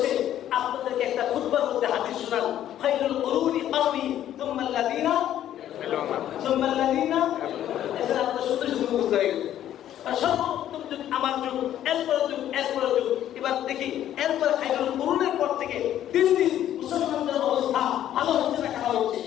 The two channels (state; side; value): quieter; right; 11.6 dB